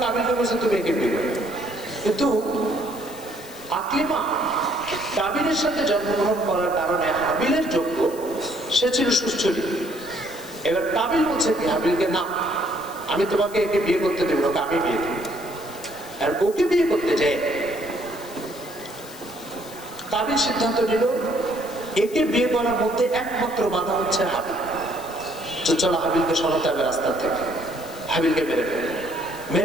কাবিলকে বলছে তুমি একে বিয়ে করবে। কিন্তু আকলিমা কাবিলের সাথে জন্মগ্রহণ করার কারণে হাবিলের যোগ্য, সে ছিল সুস্থলী। এবার কাবিল বলছে কি হাবিলকে, না আমি তোমাকে একে বিয়ে করতে দেব, ওকে আমি বিয়ে দেব। আর ওকে বিয়ে করতে যায় কাবিল সিদ্ধান্ত নিল একে বিয়ে করার মধ্যে একমাত্র বাধা হচ্ছে হাবিল। চলো হাবিলকে সরাতে হবে রাস্তা থেকে, হাবিলকে মেরে ফেলে,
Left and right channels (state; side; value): noise; left; hiss, 18 dB below the sound